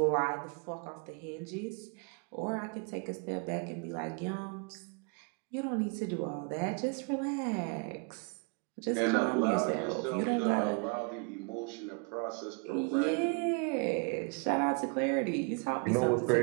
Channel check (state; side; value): quieter; left; 33.7 dB